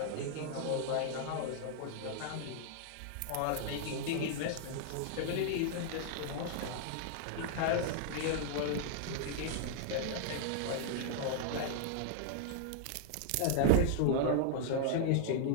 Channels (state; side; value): different; both; correlation -0.01